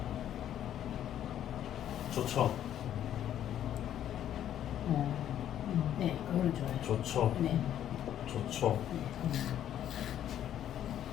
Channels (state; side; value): quieter; right; 10.9 dB